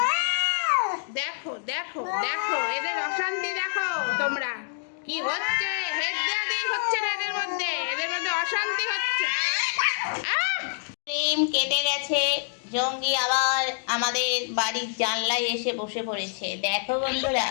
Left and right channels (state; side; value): silent; right; digital silence